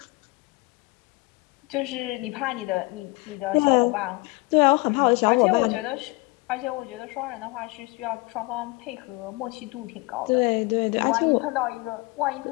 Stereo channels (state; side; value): quieter; right; 25.2 dB